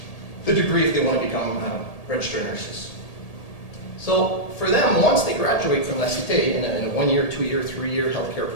the degree if they want to become registered nurses. So for them, once they graduate from La Cité in a 1 year, 2 year, 3 year healthcare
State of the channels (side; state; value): right; late; 1.8 ms